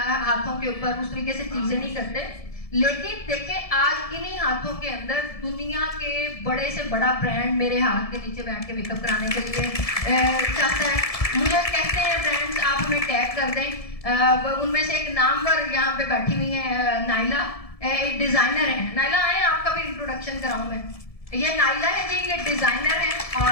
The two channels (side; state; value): right; late; 1.7 ms